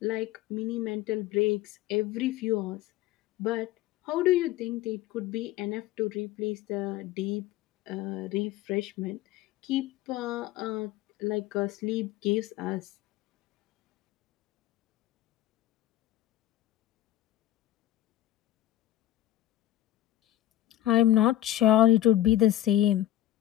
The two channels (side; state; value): right; quieter; 13.8 dB